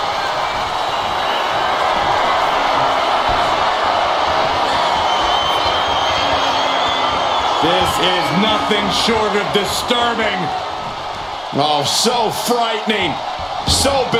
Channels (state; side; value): identical; both; correlation 1.00